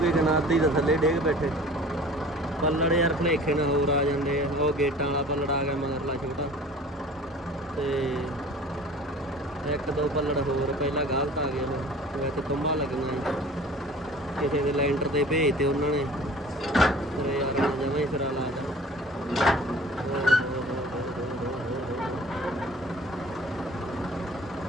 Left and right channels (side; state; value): both; normal; correlation 0.45